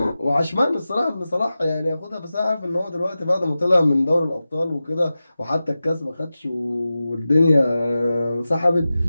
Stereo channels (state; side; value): inverted; both; correlation -0.94